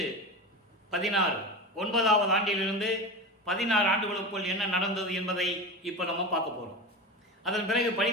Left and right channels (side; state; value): both; normal; correlation 0.26